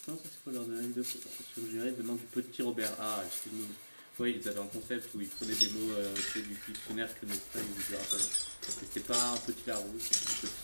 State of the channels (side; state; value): both; inverted; correlation -1.00